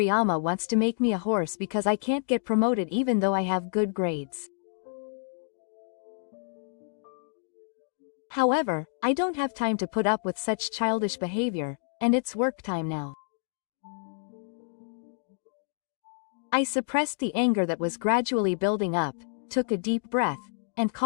wants to make me a horse because I can't get promoted even though I have good grades. However, I don't have time to put up with such childish behavior, and it's work time now. I suppressed the anger that was gradually building up, took a deep breath, and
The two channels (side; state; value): right; silent; digital silence